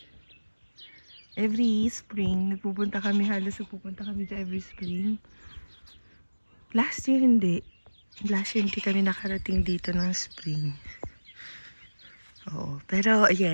Every spring, nagpupunta kami dyan every spring. Last year, hindi kami nakarating dito ng spring. Oo, pero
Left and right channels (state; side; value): inverted; both; correlation -1.00